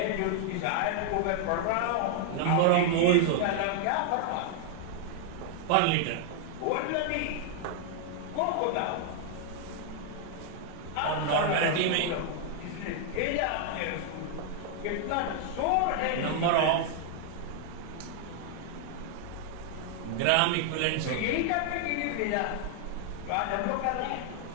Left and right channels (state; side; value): different; both; correlation 0.00